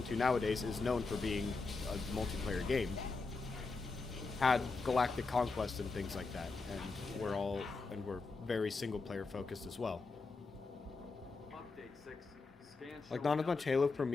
2 nowadays is known for being a multiplayer game, had Galactic Conquest and things like that. And we're very single-player focused as well. Like, not as much Halo for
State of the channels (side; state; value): right; quieter; 4.0 dB